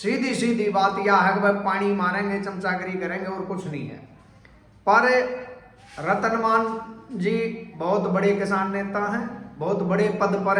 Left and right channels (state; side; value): identical; both; correlation 1.00